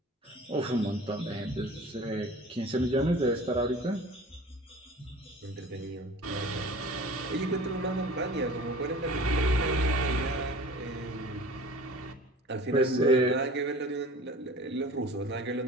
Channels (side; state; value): both; normal; correlation 0.43